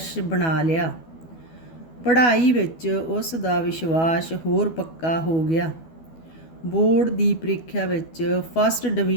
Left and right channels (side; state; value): right; late; 12 ms